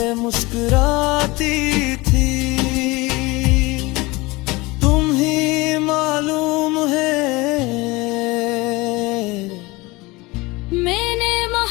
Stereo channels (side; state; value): right; quieter; 22.8 dB